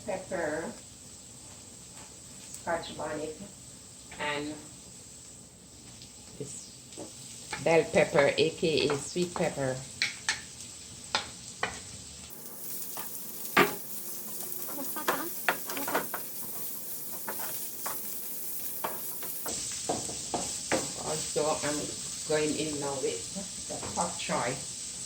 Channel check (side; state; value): both; identical; correlation 1.00